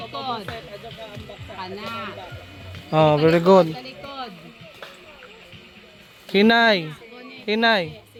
Kana. Oh, very good. Talikod. Hinay. Gunit. Hinay.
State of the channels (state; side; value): identical; both; correlation 1.00